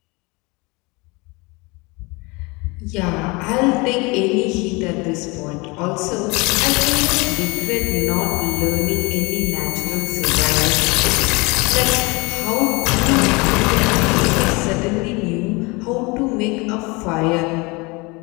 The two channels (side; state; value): right; quieter; 26.3 dB